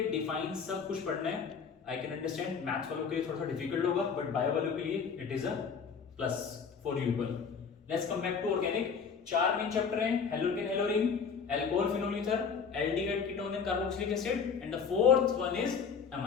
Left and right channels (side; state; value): right; quieter; 6.1 dB